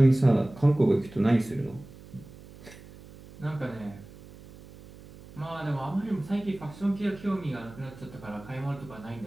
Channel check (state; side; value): noise; right; hum, 19 dB below the sound